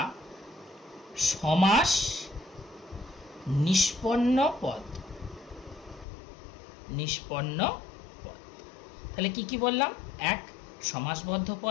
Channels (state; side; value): drops out; right; at 6.1 s